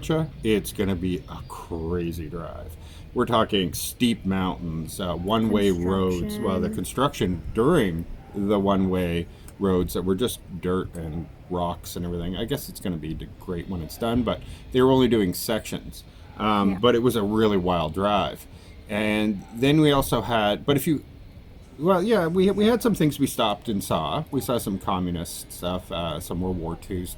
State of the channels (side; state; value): both; identical; correlation 1.00